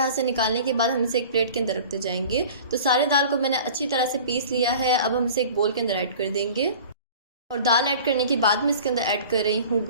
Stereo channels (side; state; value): both; inverted; correlation -0.42